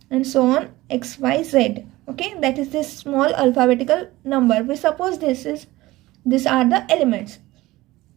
and so on X, Y, Z. Okay, that is this small alphabetical number. We suppose these are the elements.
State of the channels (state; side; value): quieter; left; 18.5 dB